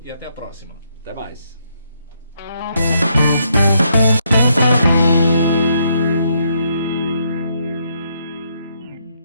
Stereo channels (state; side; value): inverted; both; correlation -0.76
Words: e até a próxima. Até mais.